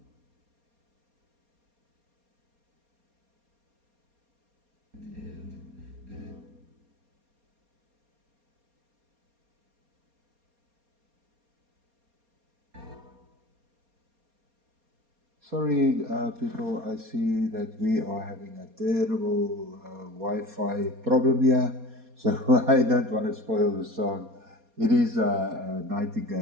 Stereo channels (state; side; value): late; left; 4.3 ms